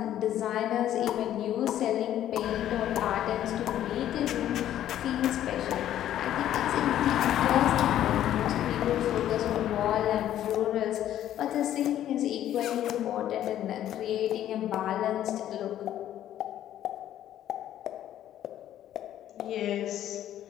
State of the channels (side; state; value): right; quieter; 11.8 dB